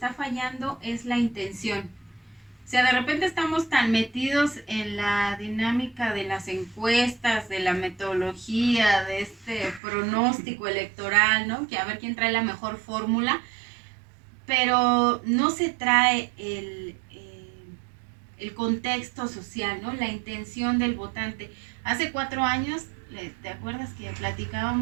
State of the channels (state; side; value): drops out; left; at 9.8 s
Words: fallando es la intención. O sea, de repente estamos tan metidos en la dinámica de las encuestas, de la metodología, de este pronóstico electoral, ¿no? Que a ver quién trae la mejor fórmula, pero no se trae el contexto social, ¿no? La intención del votante. Hace 4 años, ¿te acuerdas que